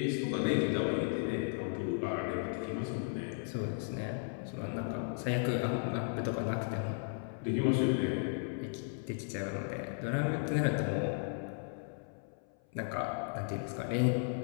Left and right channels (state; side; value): silent; right; 54 dB below the other